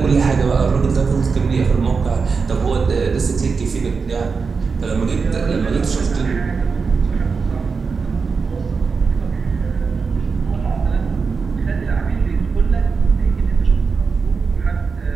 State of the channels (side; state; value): left; quieter; 5.0 dB